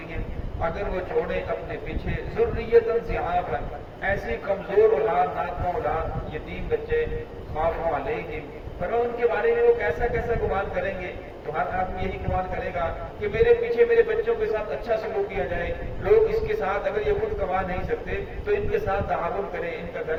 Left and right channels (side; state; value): both; identical; correlation 1.00